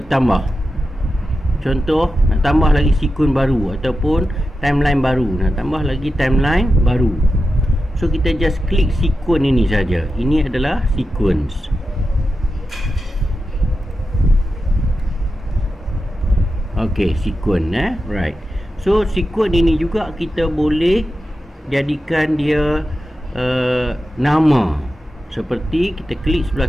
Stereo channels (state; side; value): normal; both; correlation 0.91